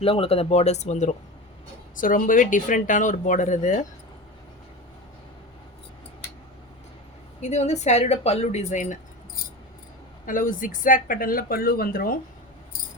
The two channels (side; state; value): both; normal; correlation 0.27